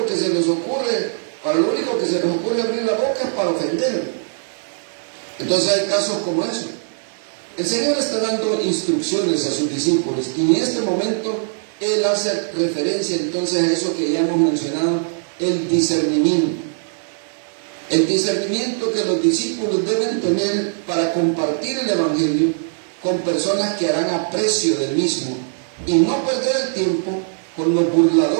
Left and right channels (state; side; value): silent; left; digital silence